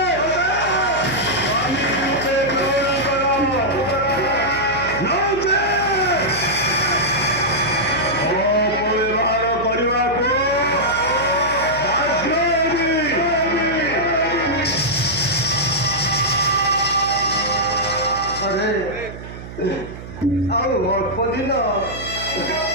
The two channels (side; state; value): right; noise; hum, 12 dB below the sound